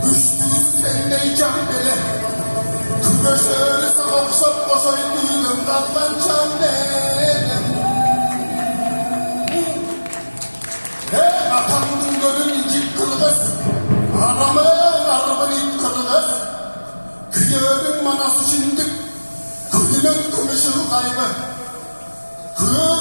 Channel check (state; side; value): inverted; both; correlation -1.00